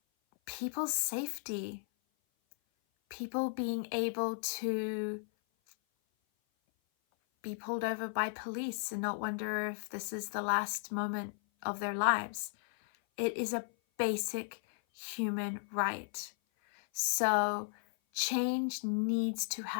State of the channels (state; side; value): silent; right; 54 dB below the other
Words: people's safety, people being able to be pulled over by police and not wonder if this is the last moment of their lives. It is a basic human right. So change needs to